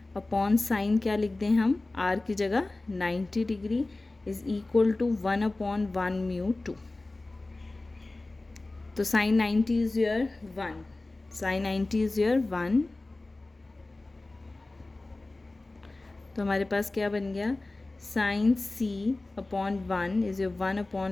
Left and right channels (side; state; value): right; quieter; 3.0 dB